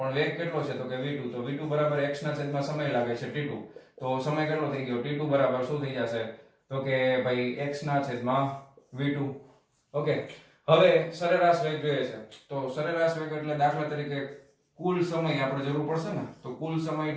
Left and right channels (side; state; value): both; identical; correlation 1.00